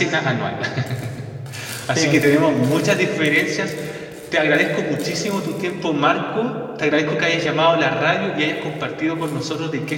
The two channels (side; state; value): both; identical; correlation 1.00